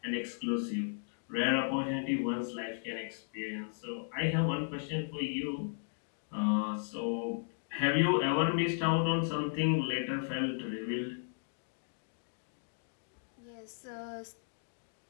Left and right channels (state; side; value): silent; right; digital silence